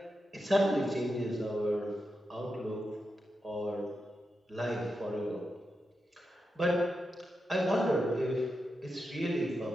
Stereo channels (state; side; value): normal; both; correlation 0.88